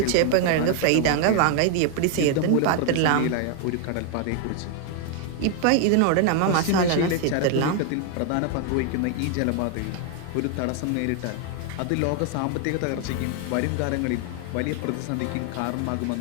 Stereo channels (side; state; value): both; different; correlation 0.00